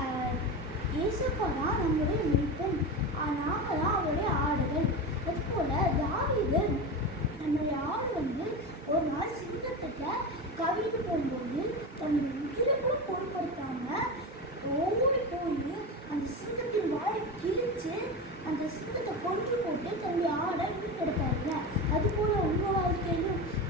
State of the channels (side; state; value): both; normal; correlation 0.23